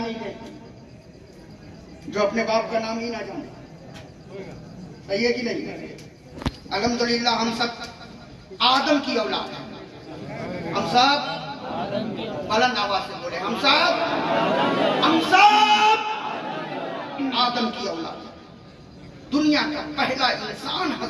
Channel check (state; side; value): identical; both; correlation 1.00